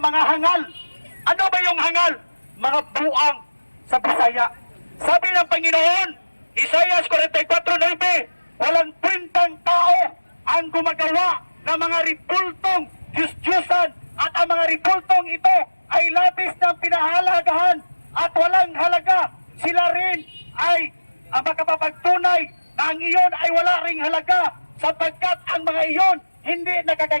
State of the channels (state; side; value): inverted; both; correlation -1.00